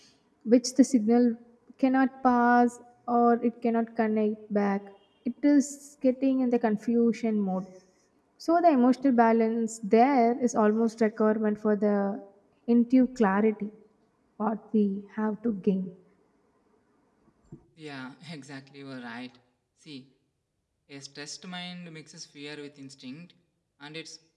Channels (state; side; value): identical; both; correlation 1.00